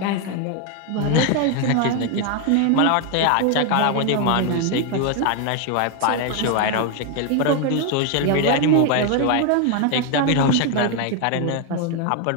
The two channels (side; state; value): both; different; correlation 0.01